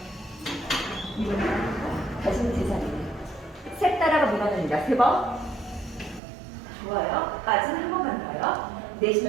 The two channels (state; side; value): drops out; left; at 6.2 s